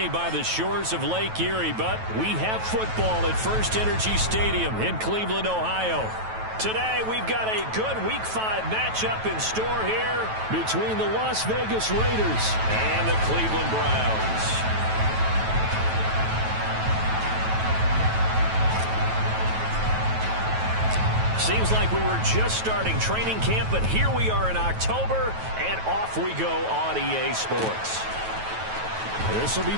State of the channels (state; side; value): late; left; 9.2 ms